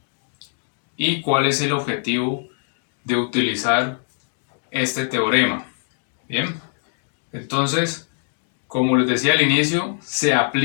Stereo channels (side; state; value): right; silent; digital silence